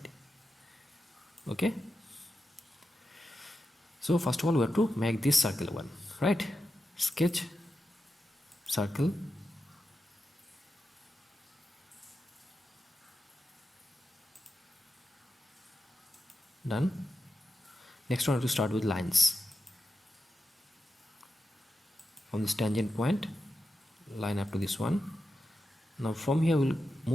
okay. So first of all we have to make this circle one, right? Sketch, circle, done. Next one we have to start with lines. From this tangent point, line up to this one. Now from here we'll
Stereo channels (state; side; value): normal; both; correlation 0.90